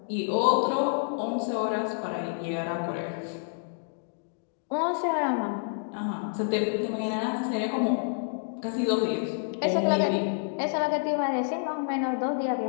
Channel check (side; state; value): right; silent; digital silence